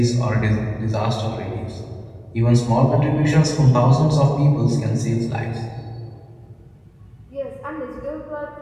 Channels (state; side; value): identical; both; correlation 1.00